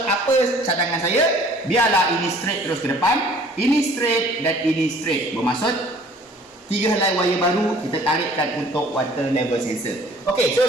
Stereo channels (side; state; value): both; normal; correlation 0.53